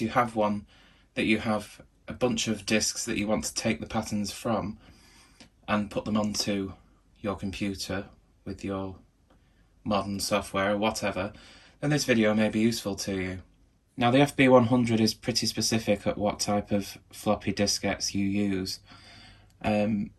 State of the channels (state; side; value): identical; both; correlation 1.00